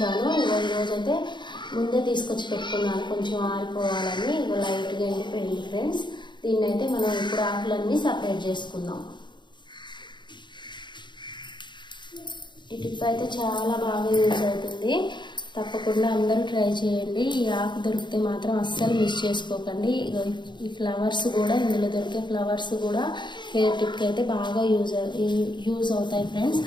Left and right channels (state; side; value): late; right; 0.22 ms